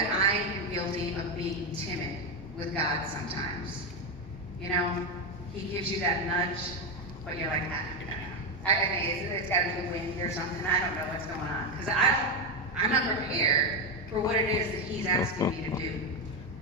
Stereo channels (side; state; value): both; normal; correlation 0.09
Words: I am guilty of being timid with God sometimes. You know, he gives you that nudge, but you're like, it's got to be the wind or something. I don't know what's going on. Because I'm not prepared for what it is that he's asking me to do.